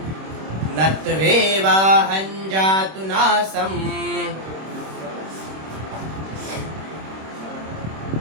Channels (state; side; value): late; left; 26 ms